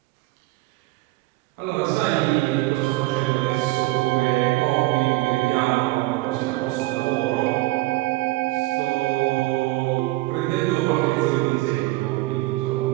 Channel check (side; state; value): left; quieter; 20.1 dB